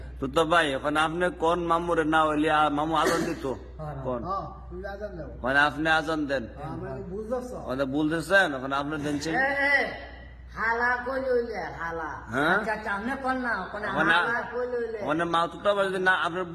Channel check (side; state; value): both; identical; correlation 1.00